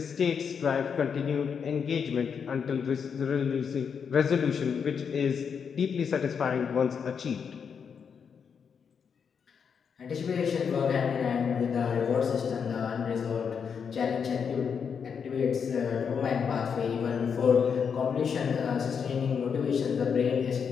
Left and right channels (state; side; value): quieter; right; 6.7 dB